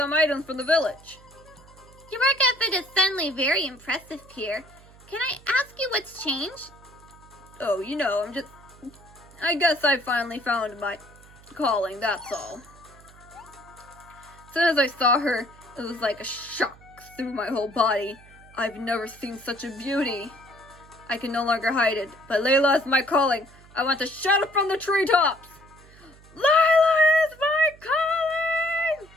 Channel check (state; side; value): noise; right; hum, 23 dB below the sound